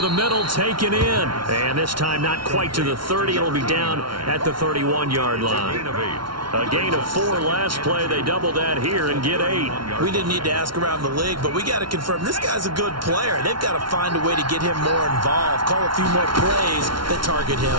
the middle, taken in. And this time not quite to the 30. It'll be down at the 31-yard line. A gain of 4 last play. They double that here and get 8. We didn't need to ask around the league, but we got to confirm this guy's a good player. They've got to find a way to get him more involved, call a few more plays that target him.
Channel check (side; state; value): left; late; 0.73 ms